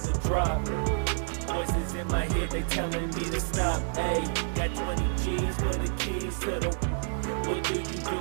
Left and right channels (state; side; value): silent; left; 59 dB below the other